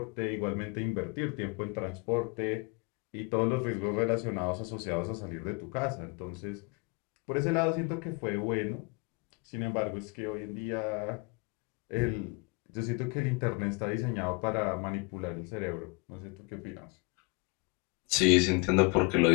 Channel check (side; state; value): right; quieter; 29.9 dB